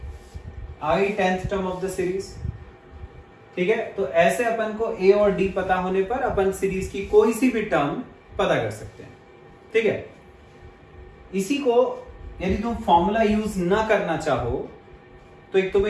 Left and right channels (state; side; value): identical; both; correlation 1.00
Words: आई 10th term of the series. ठीक है, तो ऐसे अपन को a और d पता होने पर अपन सीरीज की कोई सी भी टर्म पता कर सकते हैं। ठीक है, इसी को यदि तुम फॉर्मूला यूज ना करना चाहो तो एक